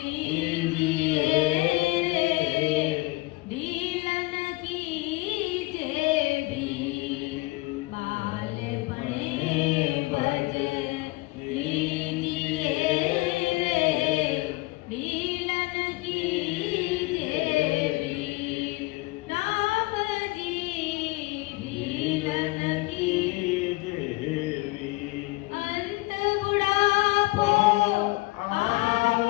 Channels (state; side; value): quieter; right; 22.9 dB